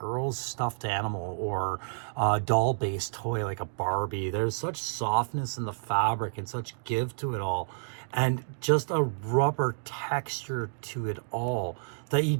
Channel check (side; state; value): left; silent; digital silence